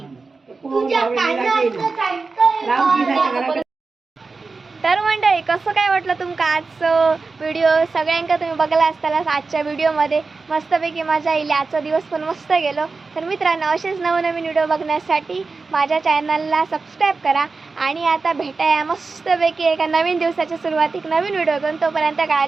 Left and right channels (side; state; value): left; quieter; 4.2 dB